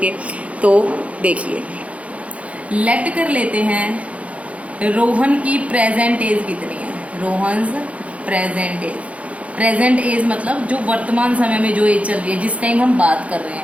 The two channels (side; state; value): left; late; 0.065 ms